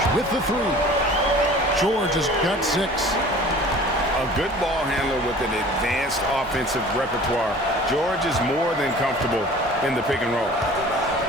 with the three. George has got 6. A good ball handler with an advanced offensive repertoire. George is more than comfortable in the pick and roll.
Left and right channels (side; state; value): both; normal; correlation 0.45